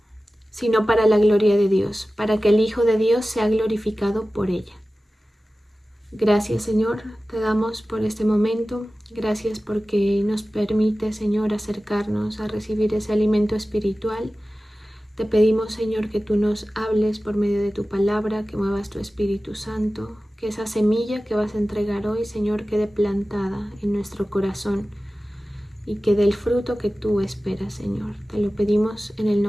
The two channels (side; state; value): both; normal; correlation 0.96